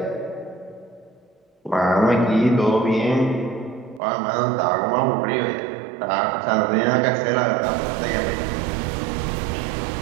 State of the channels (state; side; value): drops out; left; at 4.0 s